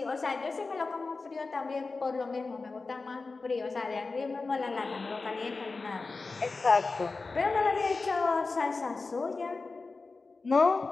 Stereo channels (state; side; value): quieter; right; 3.9 dB